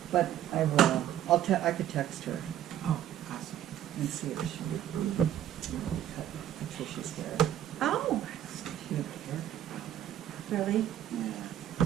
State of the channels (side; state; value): left; quieter; 11.2 dB